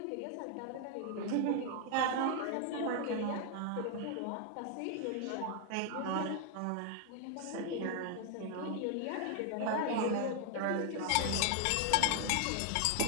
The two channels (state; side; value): different; both; correlation 0.00